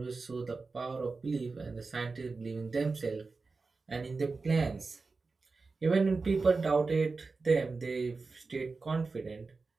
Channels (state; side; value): quieter; left; 4.1 dB